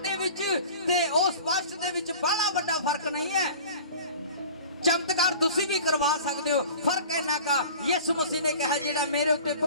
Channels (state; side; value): inverted; both; correlation -0.42